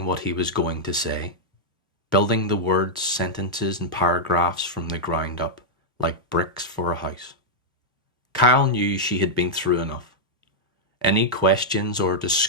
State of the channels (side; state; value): both; normal; correlation -0.05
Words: what he was going to say, building the words, sentences, and paragraphs from the ground up, like bricks for a house. Kyle knew she had been through enough. Any questions or